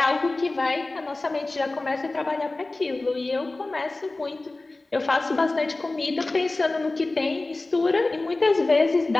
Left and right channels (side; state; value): right; quieter; 3.1 dB